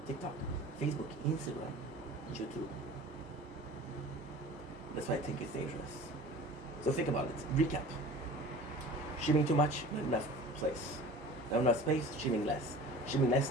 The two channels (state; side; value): normal; both; correlation 0.41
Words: TikTok, Facebook, Instagram, YouTube. That's why I think it's dangerous. So think about it. Recap. Streaming too much, not enough place. Not enough space, streaming less. Streaming